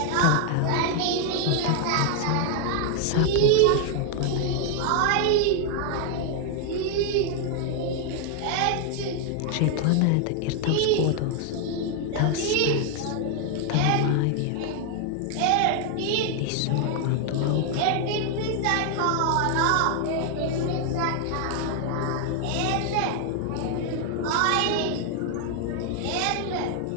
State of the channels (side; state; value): both; different; correlation 0.00